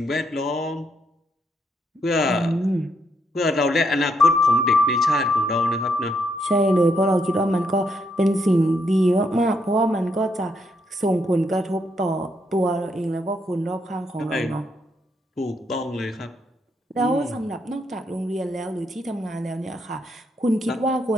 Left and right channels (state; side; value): normal; both; correlation 0.77